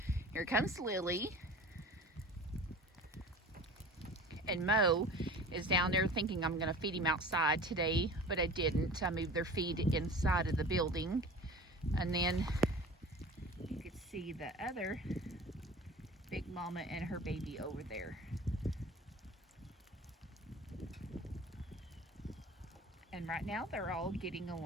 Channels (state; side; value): normal; both; correlation 0.40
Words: Here comes Lily. And Mo is down there thinking I'm going to feed him outside today, but I didn't. I moved their feed inside of the building. And then you could see the other big mama and her baby over there. And right now they're all getting